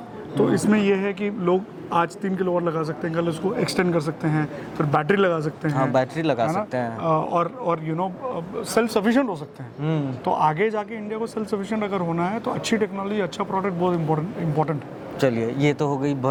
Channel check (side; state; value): both; identical; correlation 1.00